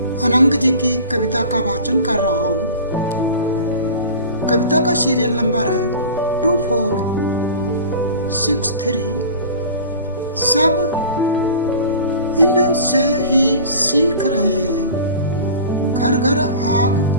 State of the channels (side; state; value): both; inverted; correlation -0.39